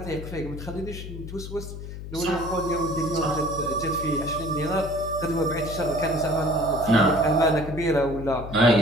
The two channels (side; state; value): left; noise; hum, 10 dB below the sound